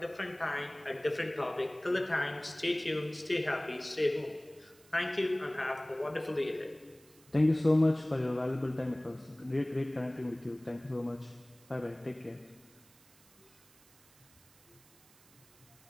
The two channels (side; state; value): right; noise; hiss, 27 dB below the sound